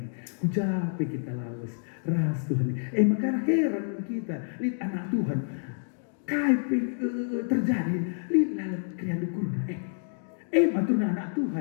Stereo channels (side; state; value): right; silent; digital silence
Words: Kujape kita lawas. Ras Tuhan ni. Maka heran kita. Lihat anak Tuhan. Kaipe terjadi. Lihat lalap kriya dukurna. Matuna anak